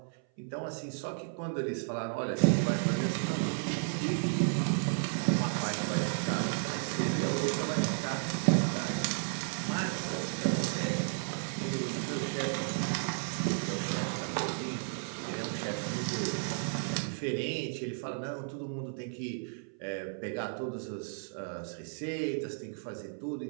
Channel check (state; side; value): silent; left; 56 dB below the other